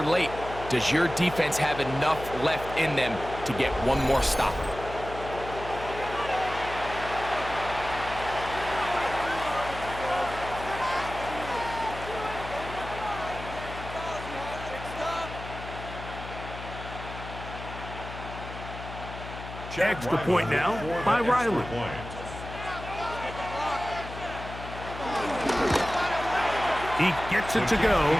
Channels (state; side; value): noise; left; hum, 11 dB below the sound